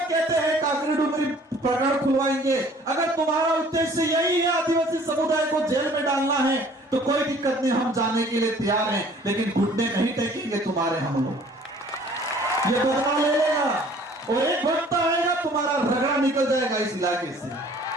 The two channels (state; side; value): normal; both; correlation 0.54